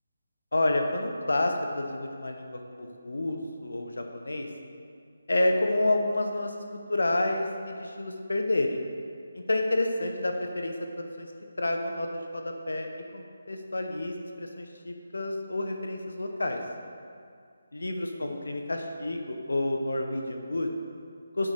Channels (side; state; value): both; inverted; correlation -0.93